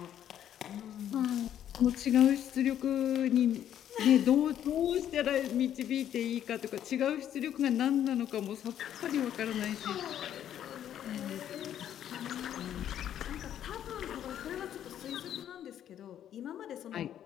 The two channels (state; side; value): quieter; right; 10.5 dB